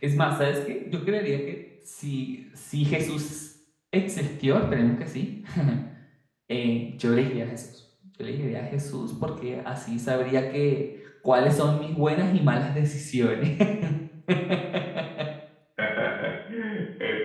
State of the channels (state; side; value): identical; both; correlation 1.00